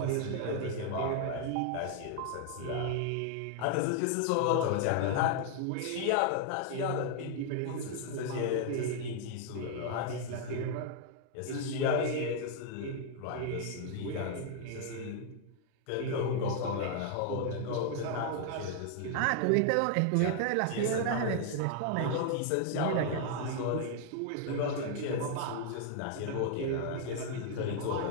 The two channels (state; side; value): different; both; correlation 0.00